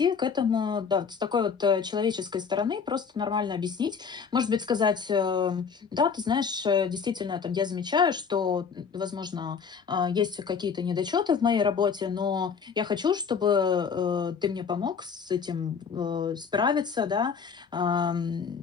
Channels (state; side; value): quieter; right; 6.1 dB